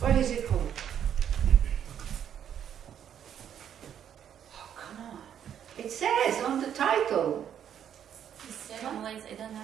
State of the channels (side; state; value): left; quieter; 9.3 dB